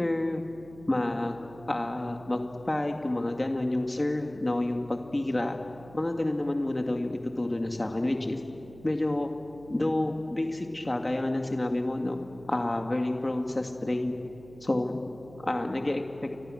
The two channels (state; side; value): noise; right; hum, 20 dB below the sound